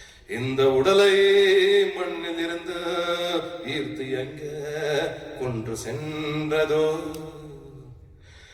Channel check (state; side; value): identical; both; correlation 1.00